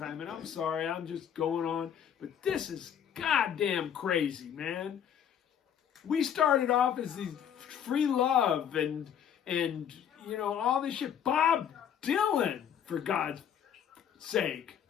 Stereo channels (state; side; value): quieter; right; 8.8 dB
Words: And I'm sorry, I'm just going on, but this is goddamn crazy, man. We started off as these free love and you know, all this shit. Bob Dylan, for God's sake.